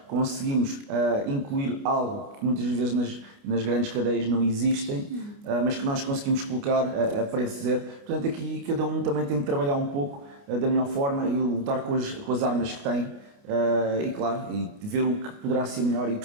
conseguimos incluir algo que muitas vezes nas grandes cadeias não existem, mas que nós conseguimos colocar a preço zero. Portanto, aqui cada um também tem que trabalhar um pouco da melhor forma e lutar com as armas que tem. E claro, e ver o que poderá ser melhor e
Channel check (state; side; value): late; left; 29 ms